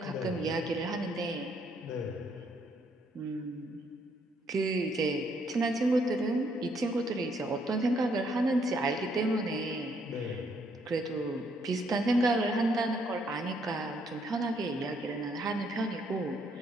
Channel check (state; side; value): normal; both; correlation 0.70